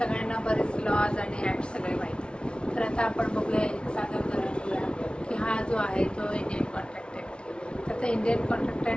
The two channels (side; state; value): right; late; 0.057 ms